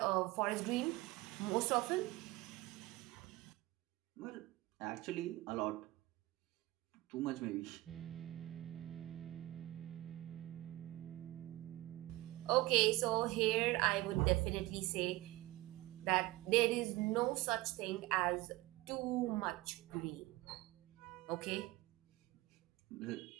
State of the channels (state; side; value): quieter; left; 19.1 dB